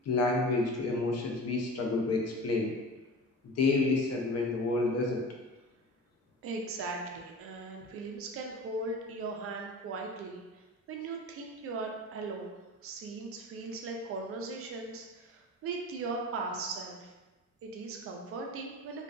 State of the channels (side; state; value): both; normal; correlation 0.36